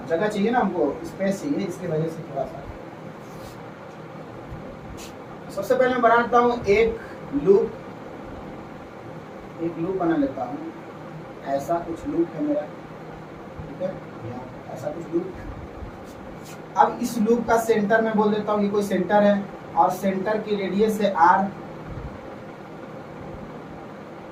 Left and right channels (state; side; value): identical; both; correlation 1.00